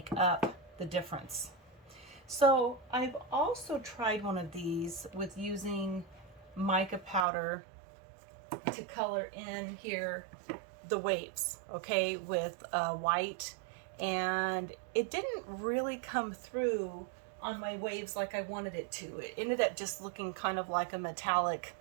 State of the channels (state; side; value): drops out; left; at 7.2 s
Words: up the difference. So I've also tried one of these with using mica powder to color in here the waves, okay, with white, and it didn't really come through on my waves like I wanted it to. It ended up just looking kind of like a metallic